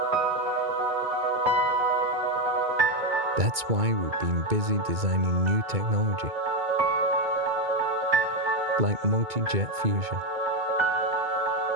That's why we've been busy designing new technology, like multi-jet fusion.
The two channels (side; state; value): left; late; 2.2 ms